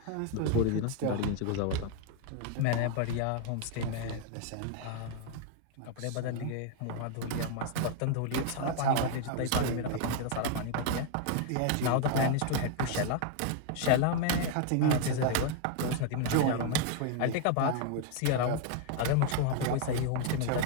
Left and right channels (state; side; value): different; both; correlation 0.00